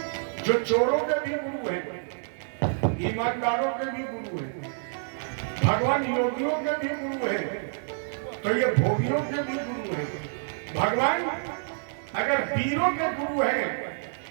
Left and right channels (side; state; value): left; silent; digital silence